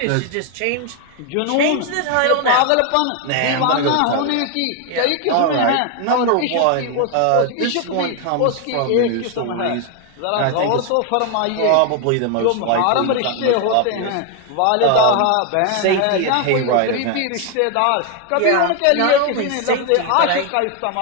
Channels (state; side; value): different; both; correlation 0.01